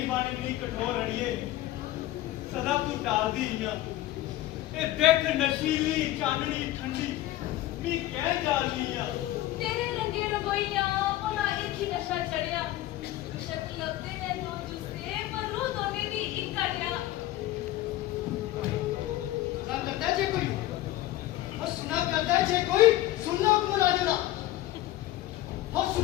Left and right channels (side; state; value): right; quieter; 15.3 dB